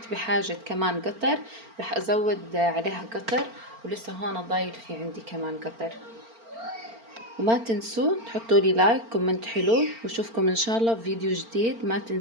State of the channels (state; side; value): late; left; 4.4 ms